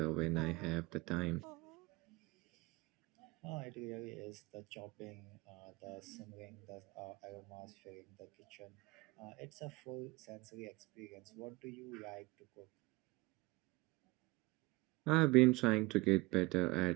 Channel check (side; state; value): left; quieter; 22.8 dB